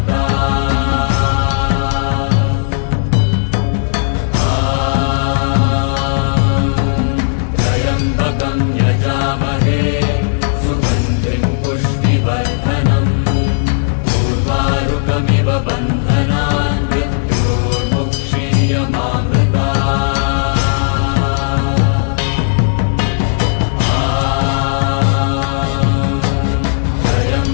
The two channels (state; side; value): silent; right; digital silence